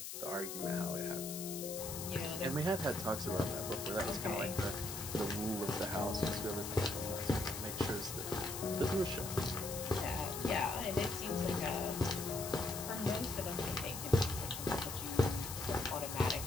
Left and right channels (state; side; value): noise; left; hiss, 7 dB below the sound